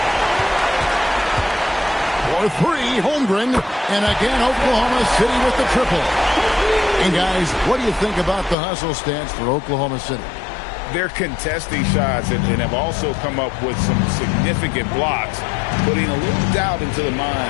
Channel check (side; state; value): right; drops out; at 8.6 s